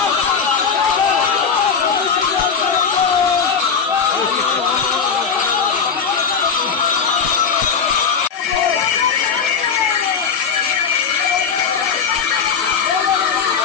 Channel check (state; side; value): quieter; right; 6.3 dB